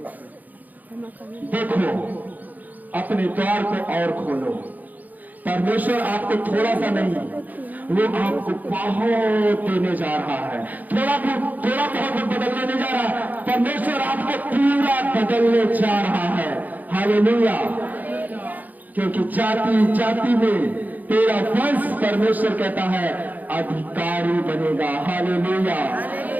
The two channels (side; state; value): left; late; 0.082 ms